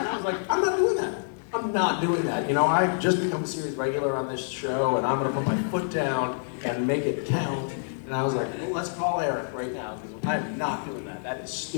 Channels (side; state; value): right; silent; 60 dB below the other